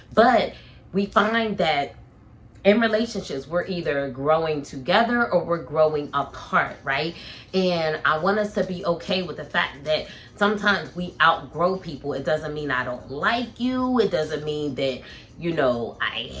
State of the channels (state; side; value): identical; both; correlation 1.00